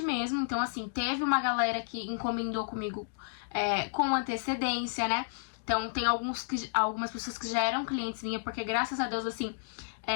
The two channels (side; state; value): right; silent; digital silence